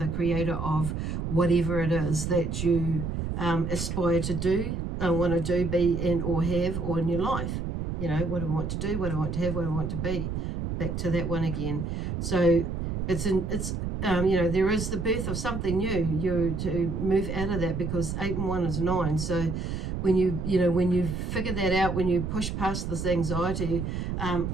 creator of whatever it is that you aspire to do, want to do, be, and or have, or in your life. What do I want to do, what do I want to have, what do I want to be? Back to that one again. So there is the birth of something new. You to move out of that, because 8 and 1 is 9. So when you figure that out, when you push past this anxiety,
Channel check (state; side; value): noise; right; rumble, 3 dB below the sound